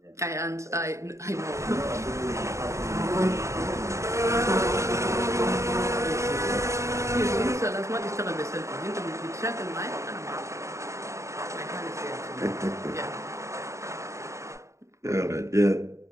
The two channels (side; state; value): left; late; 0.14 ms